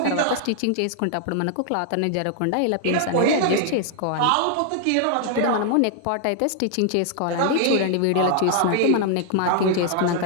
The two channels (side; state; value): both; different; correlation 0.00